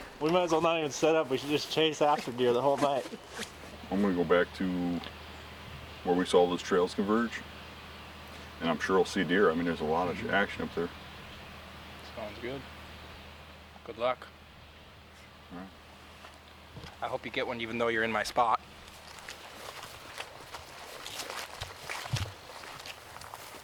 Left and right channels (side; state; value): both; identical; correlation 1.00